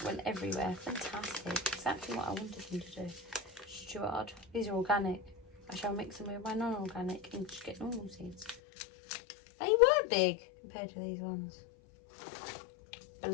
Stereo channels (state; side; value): drops out; right; at 8.6 s